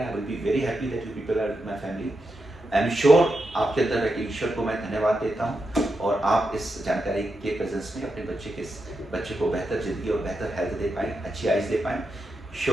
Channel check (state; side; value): normal; both; correlation 0.86